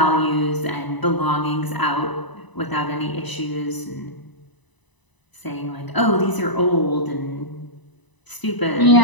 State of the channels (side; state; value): right; late; 1.0 ms